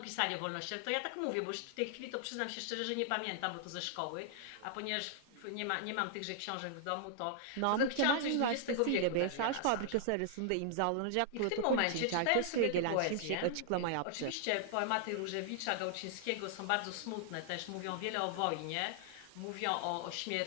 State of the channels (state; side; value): different; both; correlation -0.01